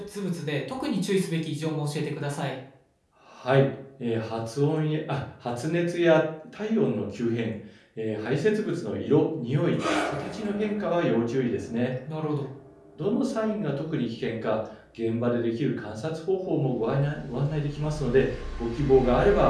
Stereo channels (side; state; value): both; identical; correlation 1.00